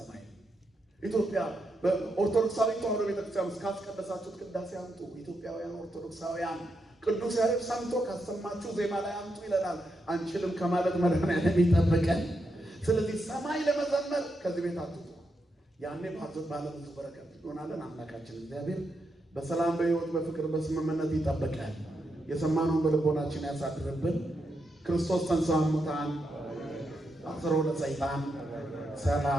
ኢትዮጵያ በኦርቶዶክሳዊ ተዋሕዶ ቤተክርስቲያን ውስጥ ካስቀደሳችሁት ቅዳሴ አምጡ። ኢትዮጵያውያን ኦርቶዶክሳውያን ቅዱስ ያሬድ ሰምቶ ካሰማችሁ ዜማ ላይ አምጡ ይለናል። አንችልም ከማለት መድኃኔዓለም ይጠብቀን። ስለዚህ ሰማይ ለመዘመር ከዚህ ቤት አትጡ። ያኔ ባለብዙ በረከት እንሆናለን። አምላካችን እግዚአብሔር በሰላም በሕይወት በፍቅር በስምምነት ይጠብቀን። የሰማነውን በልቦናችን ያሳድርብን። ክርስቶስ ተንሥአ እሙታን አሰሮ ለሰይጣን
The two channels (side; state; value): both; normal; correlation 0.83